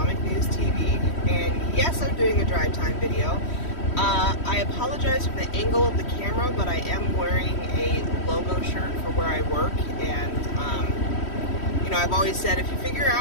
News TV, and yes, I'm doing a drive time video. I apologize for the angle of the camera, but I am wearing a logo shirt for where I work, and I've always said if you figure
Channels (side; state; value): right; late; 3.1 ms